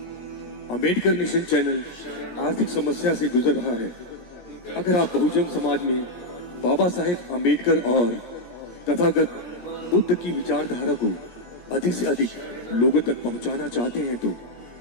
अम्बेडकर मिशन चैनल आर्थिक समस्या से गुजर रहा है। अगर आप बहुजन समाज में बाबा साहेब अम्बेडकर और तथागत बुद्ध की विचारधारा को अधिक से अधिक लोगों तक पहुंचाना चाहते हैं तो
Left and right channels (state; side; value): late; right; 17 ms